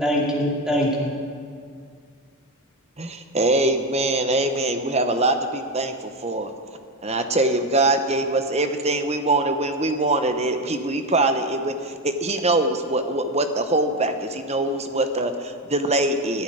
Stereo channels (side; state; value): both; normal; correlation 0.14